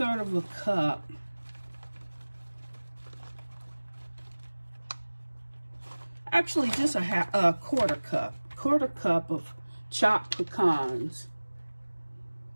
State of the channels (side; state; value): both; inverted; correlation -1.00